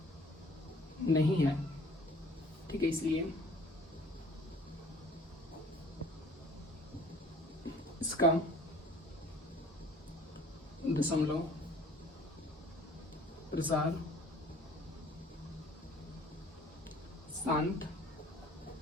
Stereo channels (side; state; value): both; normal; correlation 0.52